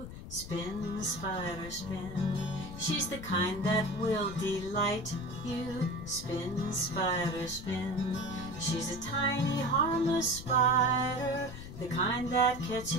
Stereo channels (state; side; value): noise; left; rumble, 11 dB below the sound